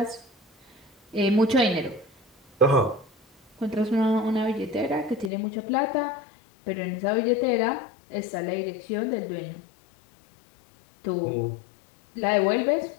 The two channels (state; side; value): drops out; right; at 5.3 s